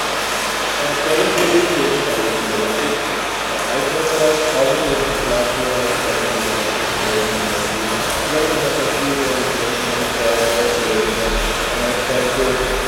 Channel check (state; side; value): identical; both; correlation 1.00